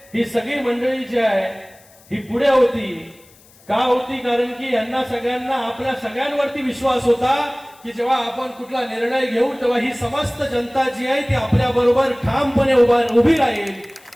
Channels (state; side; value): noise; left; hiss, 27 dB below the sound